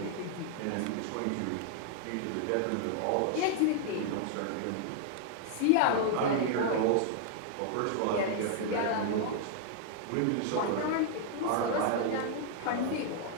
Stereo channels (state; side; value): different; both; correlation 0.00